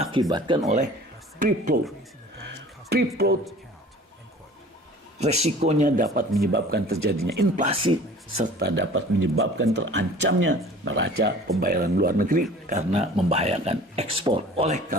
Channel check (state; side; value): normal; both; correlation 0.46